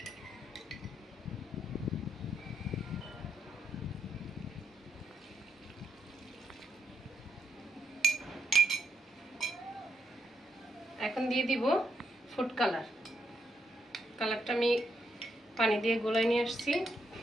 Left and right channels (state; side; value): normal; both; correlation 0.79